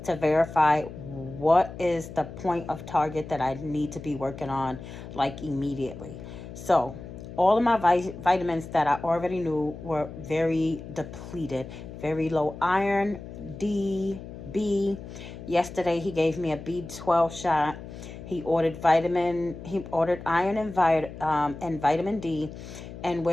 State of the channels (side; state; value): left; noise; hum, 12 dB below the sound